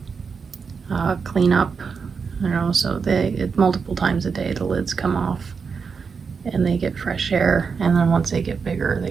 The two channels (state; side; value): quieter; left; 5.6 dB